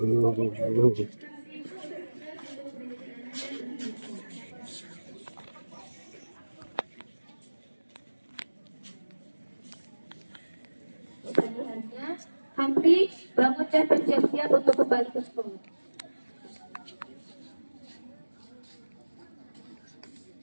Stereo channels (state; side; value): inverted; both; correlation -1.00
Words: Pilihannya, Hamdi, bangun dan bersiap-siap untuk kembali ke sekolah.